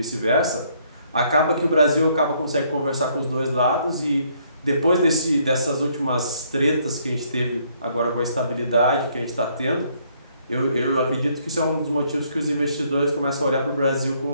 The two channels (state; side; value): inverted; both; correlation -0.68